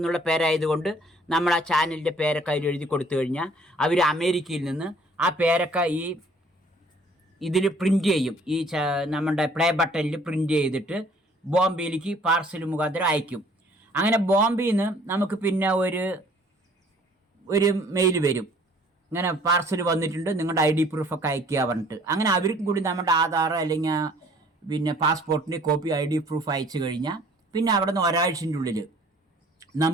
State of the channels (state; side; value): normal; both; correlation 0.56